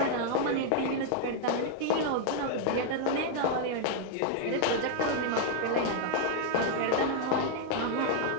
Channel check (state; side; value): different; both; correlation 0.00